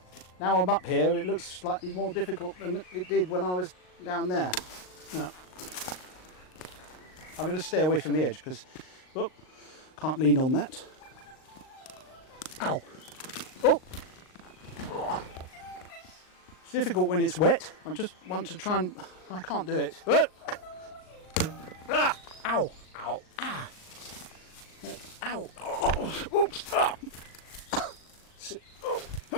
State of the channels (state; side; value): late; right; 38 ms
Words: Now I'm up here, it looks slightly more difficult than it did when I was down there. No. I'm going to stay away from the edge because, can't lean on that. Ow! Oh! It's difficult when it's wet. I just want to try and... I can't do it. Ah! Ow! Ow! Ah! Ow! Oh! Oops! Ah! Oh!